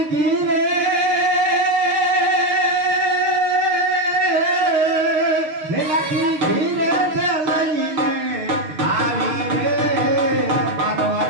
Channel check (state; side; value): late; left; 6.5 ms